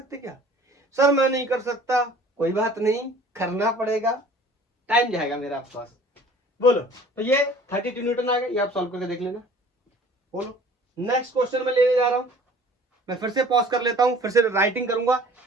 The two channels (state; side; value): normal; both; correlation 0.49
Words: क्या सर, मैं नहीं कर सकता, कोई बात नहीं, करना पड़ेगा, टाइम जाएगा मेरा आपके पास। बोलो तो ये 32 न्यूटन आ गए, ये आप सॉल्व करके देख लेना। बोलो नेक्स्ट क्वेश्चन में लेने जा रहा हूं, मैं फिर से पॉज कर लेता हूं, फिर से राइटिंग करूंगा।